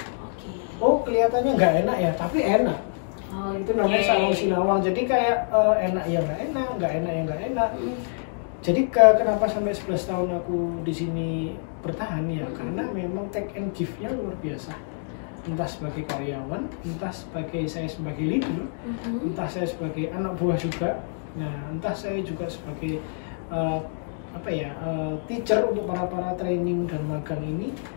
Oh kelihatannya nggak enak ya, tapi enak. Oh, itu namanya sawang sinawang. Jadi kayak enak ya nggak enak, nggak enak ya nggak enak. Jadi kenapa sampai 11 tahun aku di sini bertahan ya, karena memang take and give-nya luar biasa. Entah sebagai karyawan, entah saya sebagai leader, entah saya sebagai anak buah juga. Nah, entah saya juga sebagai teacher untuk para training dan magang ini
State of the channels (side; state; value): right; silent; digital silence